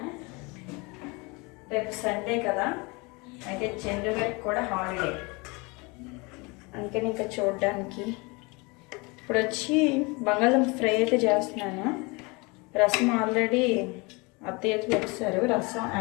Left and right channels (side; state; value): right; quieter; 27.3 dB